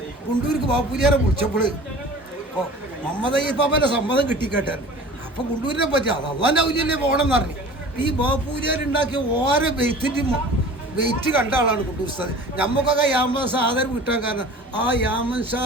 കുണ്ടൂർക്ക് ബാപ്പൂരിയാരെ വിളിച്ചപ്പോൾ അപ്പോൾ മുഹമ്മദ് അയ്യപ്പാപ്പൻ്റെ സമ്മതം കിട്ടിക്കേട്ടായിരുന്നു. അപ്പോൾ കുണ്ടൂരിനെ പറ്റി അത് അള്ളാൻ്റെ ഔലിയല്ലേ പോകണം എന്ന് പറഞ്ഞു. ഈ ബാപ്പൂരിയാരുണ്ടാക്കിയ ഓരോ വെയിറ്റ് കണ്ട ആളാണ് കുണ്ടൂർ ഉസ്താദ്. നമുക്കൊക്കെ യാമൻ ആദരവ് കിട്ടാൻ കാരണം ആ യാമൻ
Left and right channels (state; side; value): normal; both; correlation 0.42